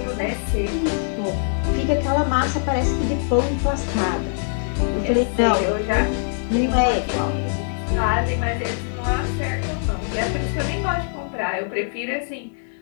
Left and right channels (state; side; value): silent; right; digital silence